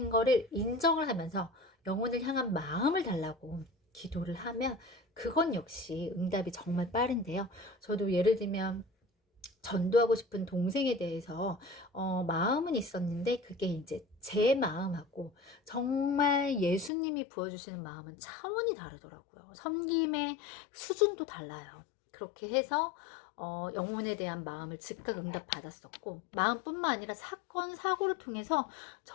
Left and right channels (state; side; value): drops out; right; at 16.9 s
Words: 거를 인정을 하면서 영혼을 향한 마음을 달라고 기도를 하면 그건 역시 응답이 정말 빠른데요. 저도 예를 들면 전도하고 싶은 동생에 대해서 마음은 있었는데 그게 이제 제 마음하고 정말 예수님이 부어주시는 마음은 차원이 다르더라고요. 섬김의 수준도 달라요. 그렇게 해서 영혼에 대한 마음을 즉각 응답 받았었고, 마음뿐만 아니라 사건, 사고를 통해서